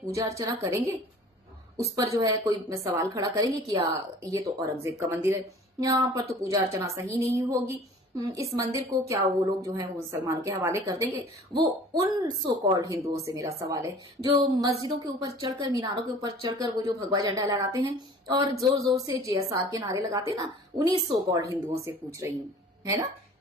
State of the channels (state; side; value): normal; both; correlation 0.46